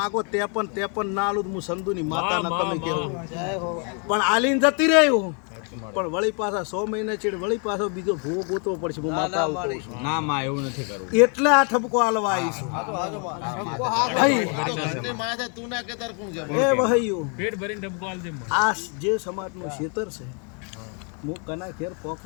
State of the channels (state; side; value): quieter; right; 38.6 dB